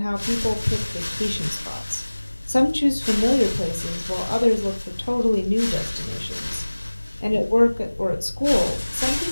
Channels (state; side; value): inverted; both; correlation -1.00